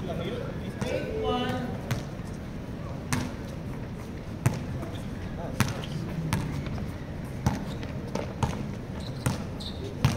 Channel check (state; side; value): identical; both; correlation 1.00